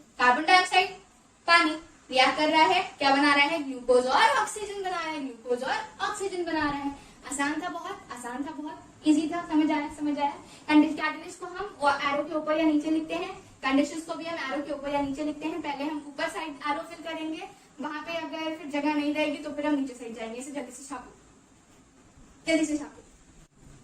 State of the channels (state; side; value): identical; both; correlation 1.00